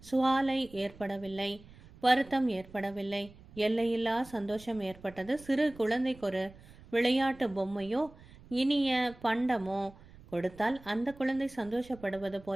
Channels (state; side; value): noise; right; rumble, 21 dB below the sound